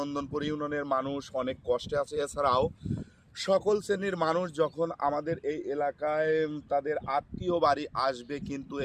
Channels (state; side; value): identical; both; correlation 1.00